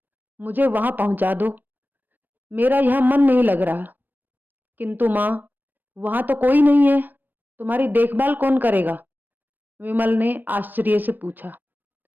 मुझे वहां पहुंचा दो। मेरा यहां मन नहीं लग रहा। किंतु माँ, वहां तो कोई नहीं है, तुम्हारी देखभाल कौन करेगा? विमल ने आश्चर्य से पूछा।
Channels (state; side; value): late; left; 0.091 ms